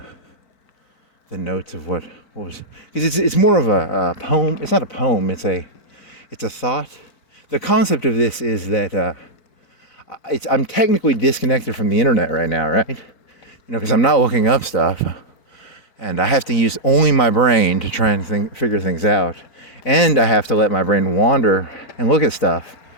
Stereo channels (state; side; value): late; right; 3.8 ms